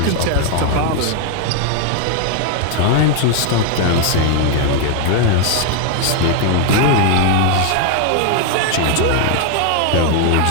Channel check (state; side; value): different; both; correlation 0.00